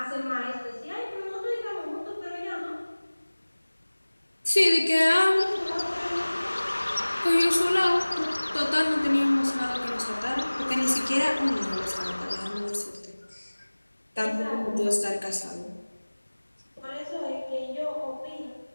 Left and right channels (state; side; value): inverted; both; correlation -1.00